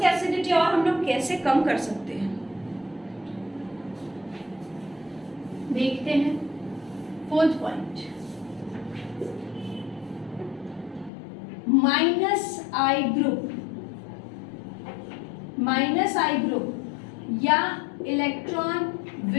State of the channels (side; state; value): right; drops out; at 11.1 s